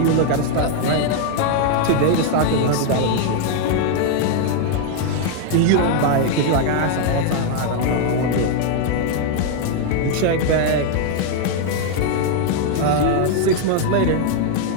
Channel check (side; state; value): both; different; correlation 0.00